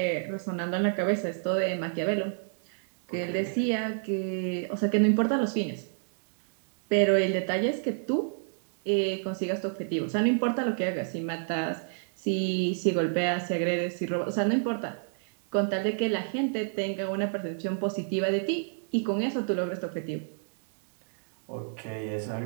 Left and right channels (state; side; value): silent; left; 59 dB below the other